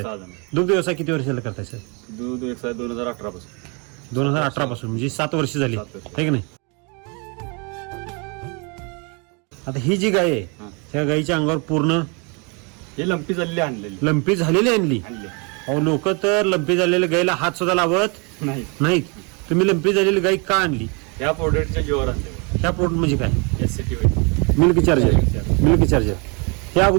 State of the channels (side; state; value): left; quieter; 32.4 dB